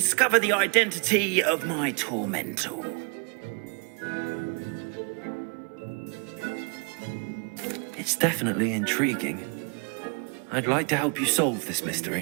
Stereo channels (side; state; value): left; quieter; 36.2 dB